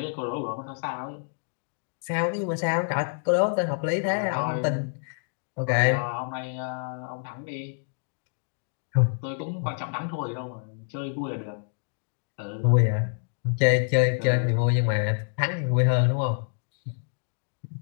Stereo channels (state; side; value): silent; right; 60 dB below the other